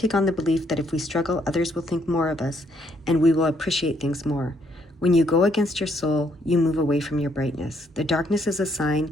on the belief that if we struggle, others will think more of us, and we will appreciate things more. When you go against your soul, you move away from your brightness. The darkness is a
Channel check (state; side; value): normal; both; correlation 0.70